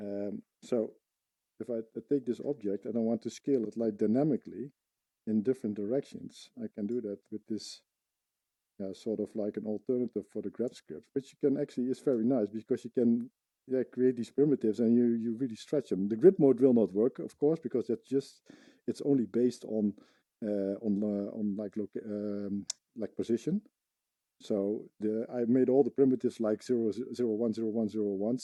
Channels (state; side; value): identical; both; correlation 1.00